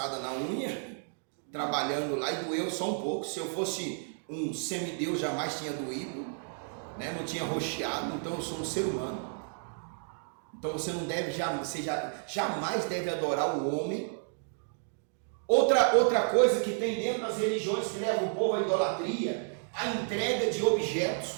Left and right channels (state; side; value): silent; left; 57 dB below the other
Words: na unha, trabalhando lá, e doeu só um pouco. Se eu fosse um semideus, jamais tinha doído, né? Não tinha roxeado. Então eu sou um ser humano. Então você não deve, jamais deve adorar o homem. Outra coisa que tem dentro das religiões que leva o povo à idolatria, a entrega de